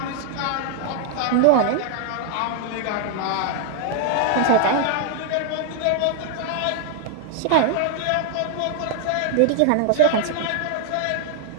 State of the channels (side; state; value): both; different; correlation 0.00